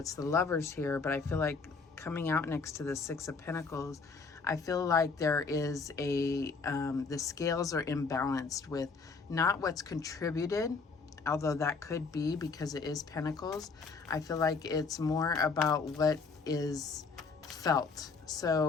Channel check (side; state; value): right; quieter; 4.6 dB